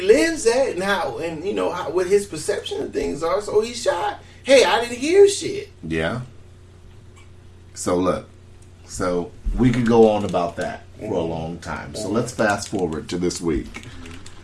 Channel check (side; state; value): both; identical; correlation 1.00